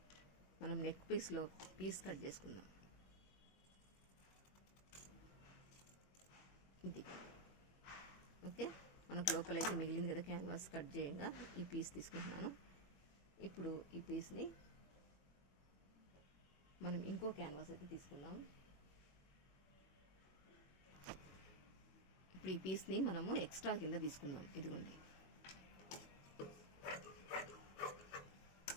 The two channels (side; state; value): right; late; 21 ms